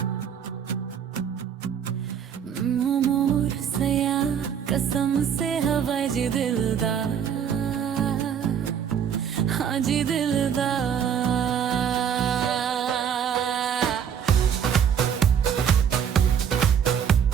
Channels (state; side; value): quieter; left; 8.1 dB